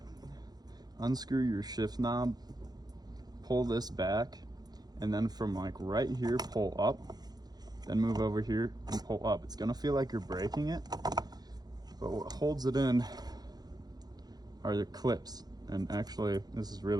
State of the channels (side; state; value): left; late; 0.19 ms